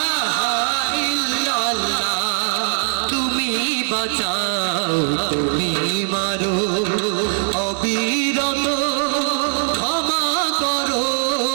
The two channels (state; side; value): silent; left; 66 dB below the other